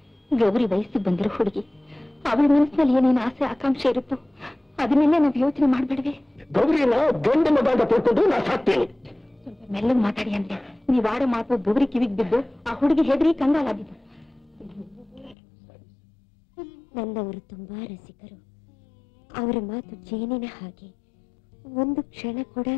ಗೌರಿ ವಯಸ್ಸಿಗೆ ಬಂದಿರೋ ಹುಡುಗಿ, ಅವಳ ಮನಸ್ಸಿನಲ್ಲಿ ಏನೇನು ಆಸೆ ಆಕಾಂಕ್ಷೆ ಇರುತ್ತೋ ಅದನ್ನೆಲ್ಲ ನಾವು ಯೋಚನೆ ಮಾಡ್ಬೇಡ್ವೆ. ಗೌರಿನ ಗಂಡ ಮಗ ಅಂತ ತಿಳ್ಕೊಂಡು ನಾ ಸಾಕ್ತೇನೆ. ಸ್ವಲ್ಪ ಮೆಲ್ಲಗೆ ಮಾತಾಡಿ ಅಂದ್ರೆ ನೀವ್ ಆಡೋ ಮಾತು ಗೌರಿ ಕಿವಿಗೆ ಬಿದ್ದು ಆ ಹುಡುಗಿ ಹೆದರಿ ಕಂಗಾಲಾಗಿದ್ದು. ನನ್ನವರು ತುಂಬಾ ರಸಿಕರು. ಅವರ ಮಾತು ಜೇನಿನ ಹಾಗೆ, ಒಂದು ಕ್ಷಣ ಕೂಡ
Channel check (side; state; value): right; drops out; at 15.4 s